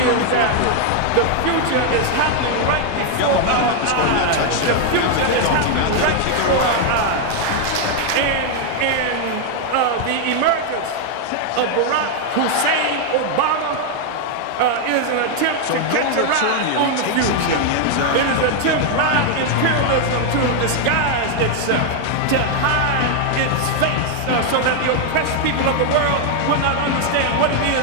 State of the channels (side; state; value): both; different; correlation 0.00